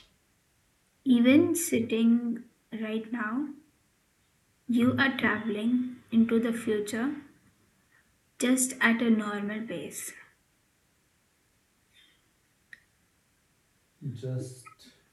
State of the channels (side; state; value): both; identical; correlation 1.00